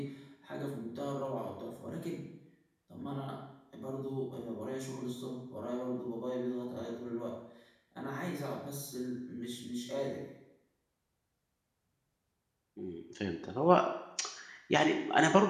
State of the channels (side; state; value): both; identical; correlation 1.00